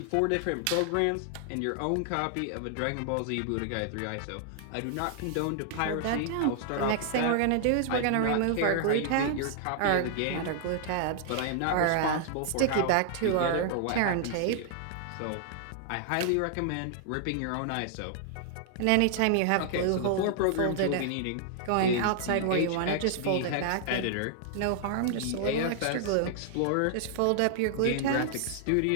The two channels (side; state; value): both; different; correlation -0.01